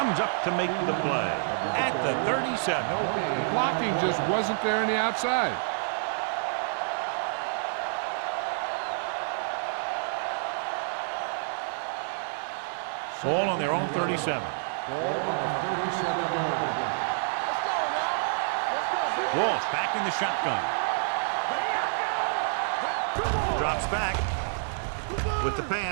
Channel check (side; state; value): left; silent; digital silence